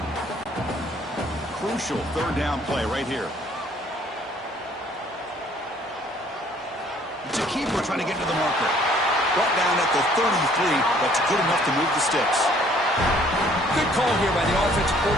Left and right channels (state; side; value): normal; both; correlation 0.60